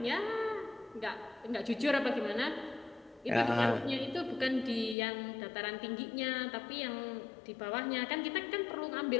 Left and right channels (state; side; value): drops out; right; at 5.0 s